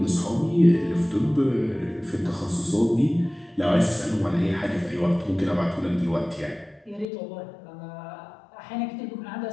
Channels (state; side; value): drops out; right; at 7.1 s